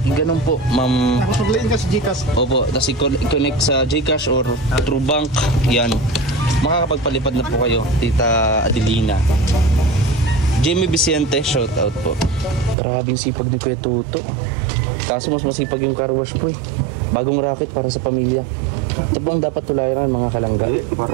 ganun po, ma'am. Nakapaglain ka sa Gcash. Opo, tapos i-connect sa Gcash or through bank. Yan. Makakapagpalipad na po kayo, Tita Adelina. Jamie Vicente, shout out po. Grabing sipag ni Kuya Tuto. Kaso mas masipag yung car wash po eh. Bagong racket para sa pamilya. Ito po ang dapat tulayan mga kalangga. Para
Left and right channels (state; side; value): drops out; left; at 12.8 s